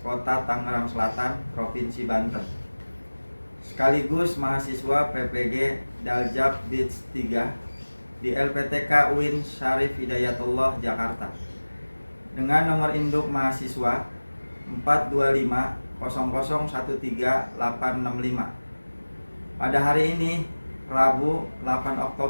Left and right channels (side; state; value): both; inverted; correlation -1.00